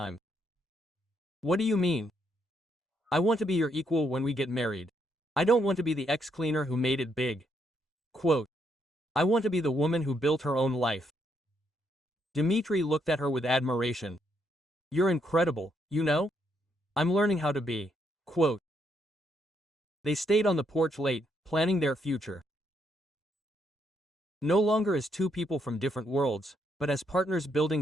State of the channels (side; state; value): both; normal; correlation 0.75